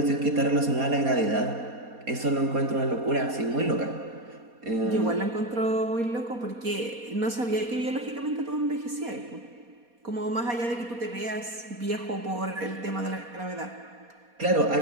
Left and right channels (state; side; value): late; left; 4.2 ms